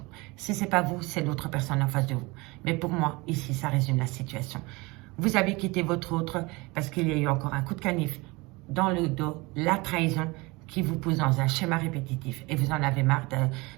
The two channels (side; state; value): left; quieter; 24.3 dB